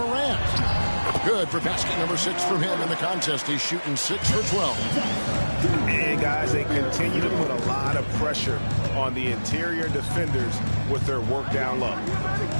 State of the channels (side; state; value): both; inverted; correlation -1.00